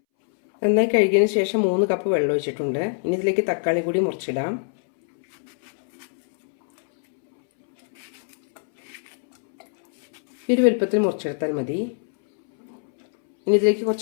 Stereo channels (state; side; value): silent; right; 64 dB below the other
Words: നന്നായി കഴുകിയതിന് ശേഷം 3 കപ്പ് വെള്ളം ഒഴിച്ചിട്ടുണ്ട്. ഇനി ഇതിലേക്ക് തക്കാളി കൂടി മുറിച്ചിടാം. ഈ ഒരു വലുപ്പത്തിൽ മുറിച്ചെടുത്താൽ മതി. ഇനി ഇതിലേക്ക്